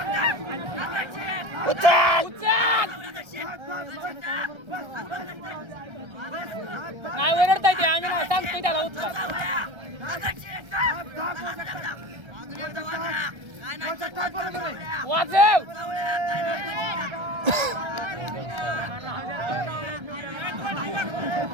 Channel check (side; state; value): left; late; 1.3 ms